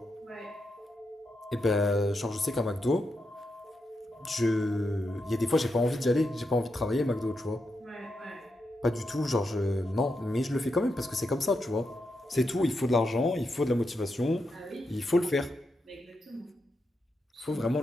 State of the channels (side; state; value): both; normal; correlation 0.85